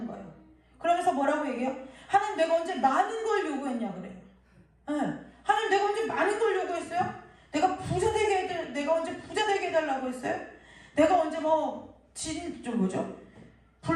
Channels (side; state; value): both; identical; correlation 1.00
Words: 거예요. 그러면서 뭐라고 얘기해요? 하나님 내가 언제 많은 걸 요구했냐 그래요. 하나님 내가 언제 많은 걸 요구했어요? 내가 언제 부자 되게 해달라고 했어요? 내가 언제